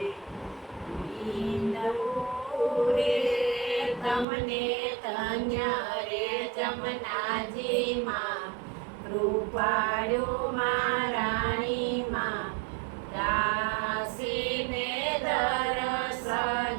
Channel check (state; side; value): drops out; left; at 4.2 s